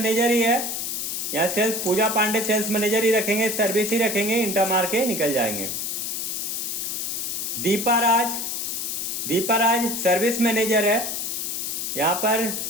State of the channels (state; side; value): noise; left; hiss, 3 dB below the sound